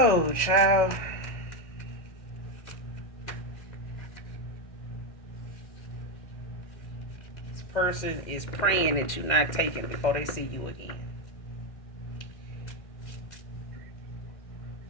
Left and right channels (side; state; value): right; late; 1.6 ms